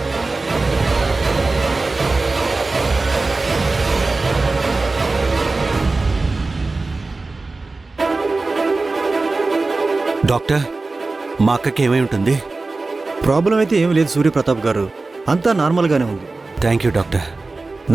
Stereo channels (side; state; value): left; quieter; 3.5 dB